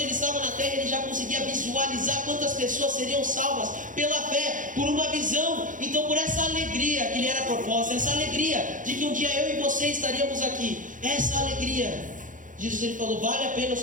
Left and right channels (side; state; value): left; late; 0.38 ms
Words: ele estava na terra, ele já conseguia visualizar quantas pessoas seriam salvas pela fé, por uma visão. Então, por essa alegria que lhe era proposta, essa alegria de que um dia eu e você estaríamos aqui, essa alegria, Jesus ele falou: vale a pena